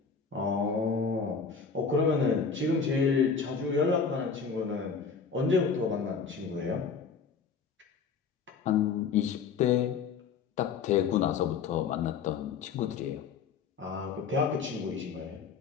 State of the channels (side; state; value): right; quieter; 5.8 dB